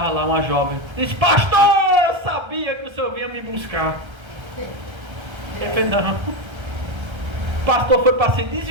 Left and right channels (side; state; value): left; late; 1.3 ms